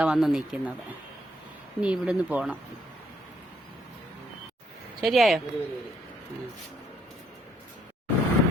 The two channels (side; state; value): both; normal; correlation 0.71